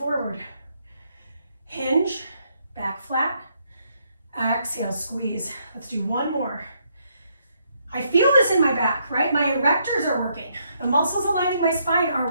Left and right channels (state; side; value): inverted; both; correlation -0.74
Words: Hinge, back flat. Exhale, squeeze. Let's do one more. I feel this in my back, right? My erectors are working. The muscles aligning my spine